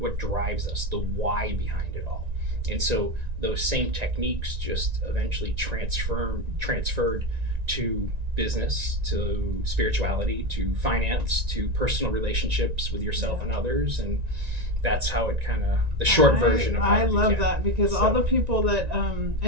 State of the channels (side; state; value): left; late; 1.9 ms